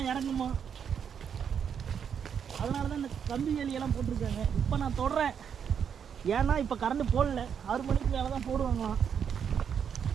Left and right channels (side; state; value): left; quieter; 7.6 dB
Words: இறங்குமா, அதனால தான் இந்த கம்பி வேலியெல்லாம் போட்டிருக்காங்க. இப்போ நான் தொடறேன், ஏன்னா இப்போ கரண்ட் போடல. 6 மணிக்கு மேலே தான் போடுவாங்களாம்.